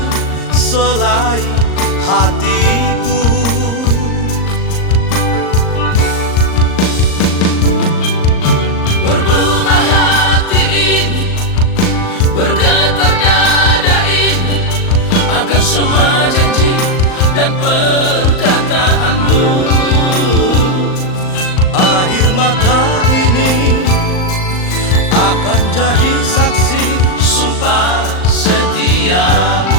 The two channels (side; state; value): right; late; 38 ms